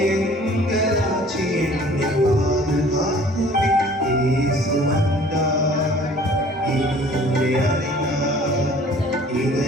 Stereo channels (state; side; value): normal; both; correlation 0.51